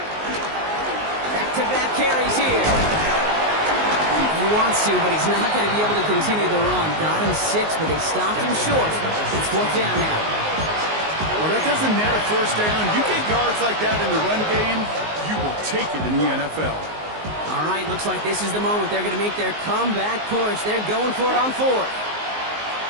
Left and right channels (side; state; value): left; late; 19 ms